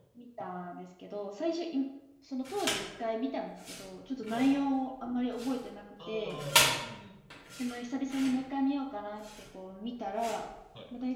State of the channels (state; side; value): identical; both; correlation 1.00